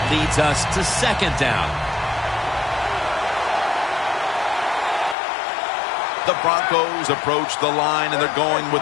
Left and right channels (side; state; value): right; drops out; at 5.2 s